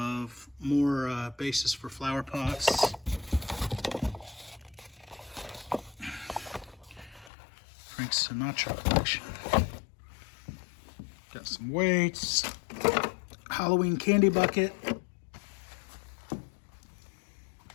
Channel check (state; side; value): drops out; right; at 7.3 s